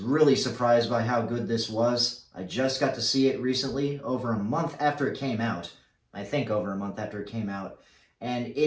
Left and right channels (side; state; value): both; identical; correlation 1.00